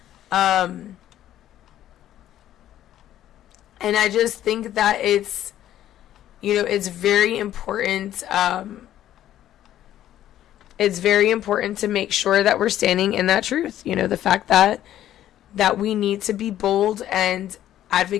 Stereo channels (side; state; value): right; quieter; 12.2 dB